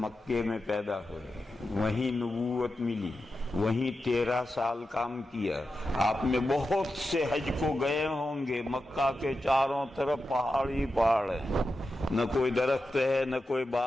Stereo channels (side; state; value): both; normal; correlation 0.90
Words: مکے میں پیدا ہوئے، وہیں نبوت ملی، وہیں 13 سال کام کیا۔ آپ میں بہت سے حج کو گئے ہوں گے، مکہ کے چاروں طرف پہاڑ ہی پہاڑ ہیں، نہ کوئی درخت ہے نہ کوئی